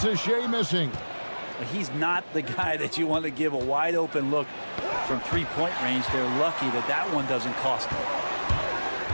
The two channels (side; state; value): both; inverted; correlation -1.00